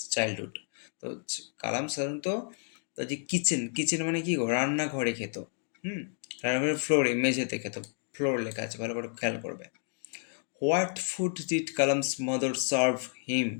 childhood. তো কালাম সাধারণত তার যে কিচেন, কিচেন মানে কি গো? রান্নাঘরে খেত। হুম। রান্নাঘরের ফ্লোরে, মেঝেতে খেত। ফ্লোর লেখা আছে, ভালো করে খেয়াল করবে। What food did Kalam's mother serve him,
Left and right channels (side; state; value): right; silent; 55 dB below the other